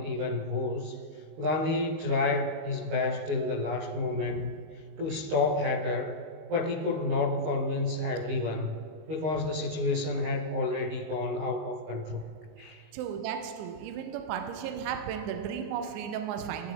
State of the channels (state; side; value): late; left; 19 ms